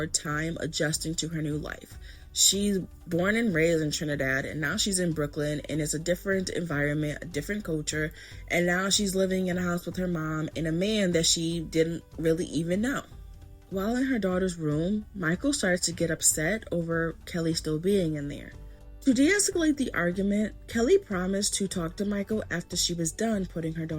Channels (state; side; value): identical; both; correlation 1.00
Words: time adjusting to her new life. She's born and raised in Trinidad, and now she's in Brooklyn, and it's a different environment, a different culture, and now she's living in a house with her mom and a man that she didn't really even know. While in her daughter's room, Michael started to get upset over Kelly still being in there. To de-escalate the argument, Kelly promised to talk to Michael after she was done putting her